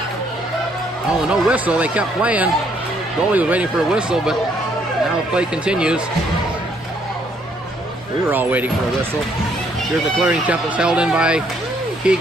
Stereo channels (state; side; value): normal; both; correlation 0.68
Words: Oh, no whistle. They kept playing. The goalie was waiting for a whistle, but now the play continues. We were all waiting for a whistle. Here's the clearing attempt that's held in by